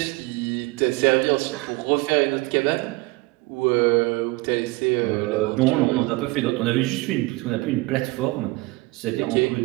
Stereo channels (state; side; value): quieter; left; 22.7 dB